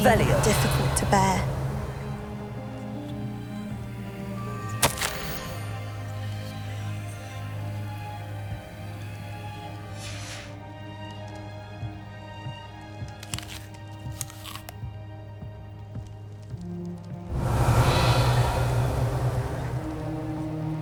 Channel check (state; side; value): identical; both; correlation 1.00